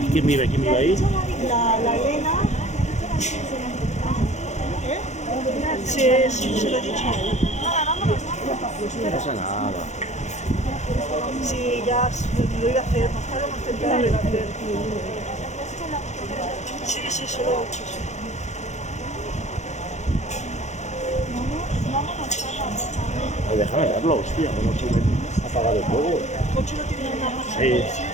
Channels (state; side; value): late; right; 0.33 ms